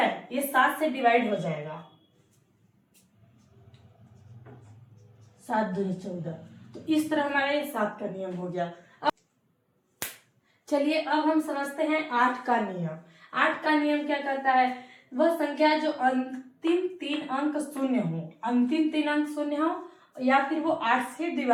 ये 7 से डिवाइड हो जाएगा, 7 दूनी 14। तो इस तरह हमारा ये 7 का नियम हो गया। चलिए अब हम समझते हैं 8 का नियम। 8 का नियम क्या कहता है? वह संख्या जो अंतिम 3 अंक शून्य हो, अंतिम 3 अंक शून्य हो या फिर वो 8 से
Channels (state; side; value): identical; both; correlation 1.00